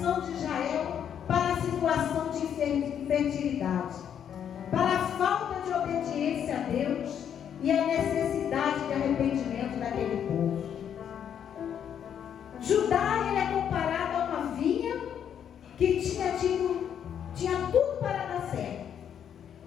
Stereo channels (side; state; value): right; quieter; 8.8 dB